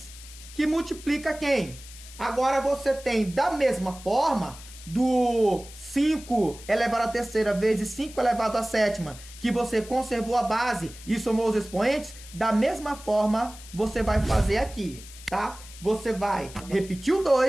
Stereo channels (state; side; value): noise; left; hiss, 17 dB below the sound